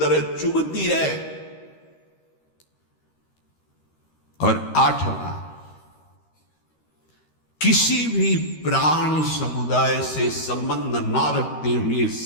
चुभती है। और आठवां, किसी भी प्राणी समुदाय से संबंध ना रखते हुए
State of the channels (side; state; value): right; late; 13 ms